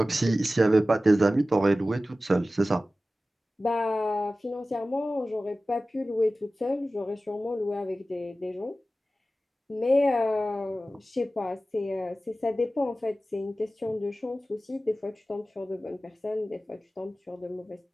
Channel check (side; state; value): both; normal; correlation 0.95